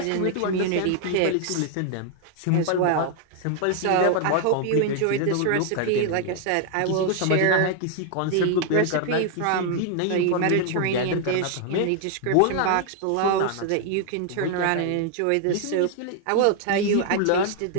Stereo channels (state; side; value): different; both; correlation 0.00